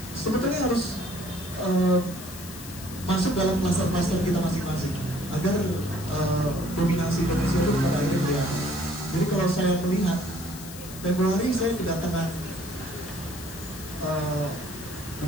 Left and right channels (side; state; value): left; noise; hiss, 14 dB below the sound